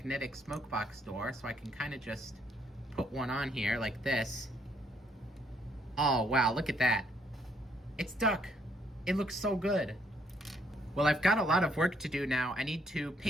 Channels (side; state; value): both; normal; correlation 0.70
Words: smoke box door, so I can kind of just put one on here like this. Oh, wow, look at that. It's duck. It looks so good. Well, I've got a lot of work to do now. I need to